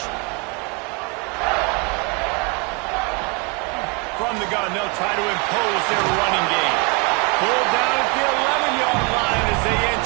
From the gun, they'll try to impose their running game. Pulled down at the 11-yard line as they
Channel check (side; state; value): left; quieter; 31.9 dB